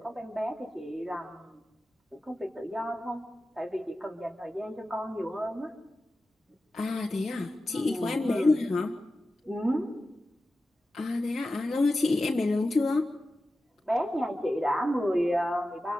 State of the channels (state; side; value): normal; both; correlation 0.93